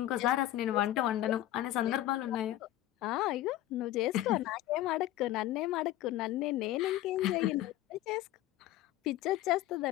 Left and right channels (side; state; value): right; quieter; 14.5 dB